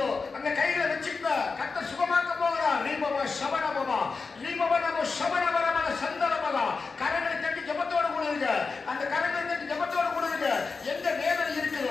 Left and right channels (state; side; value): quieter; right; 4.5 dB